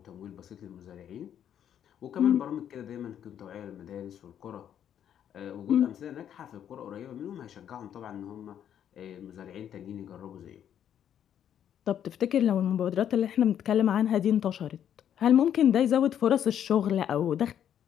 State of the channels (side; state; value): right; quieter; 9.7 dB